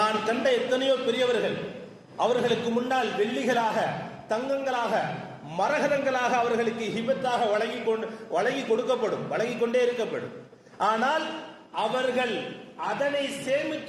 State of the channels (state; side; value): identical; both; correlation 1.00